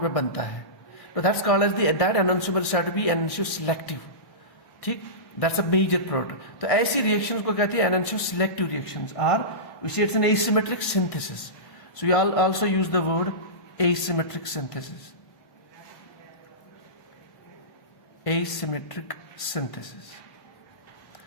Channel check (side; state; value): right; late; 1.6 ms